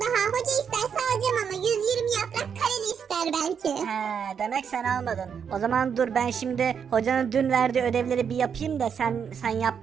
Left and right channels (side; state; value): left; quieter; 7.2 dB